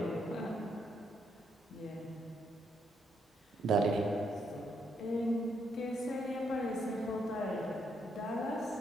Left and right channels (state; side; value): normal; both; correlation 0.75